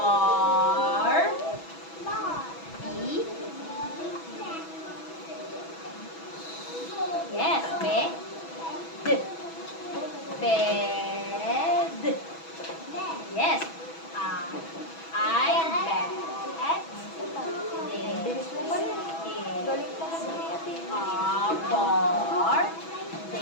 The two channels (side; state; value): right; late; 6.1 ms